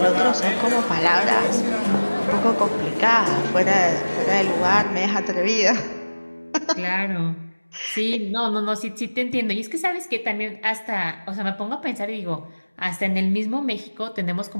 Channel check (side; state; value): both; inverted; correlation -1.00